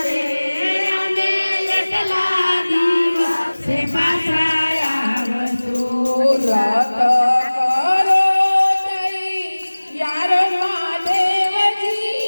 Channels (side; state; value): both; inverted; correlation -1.00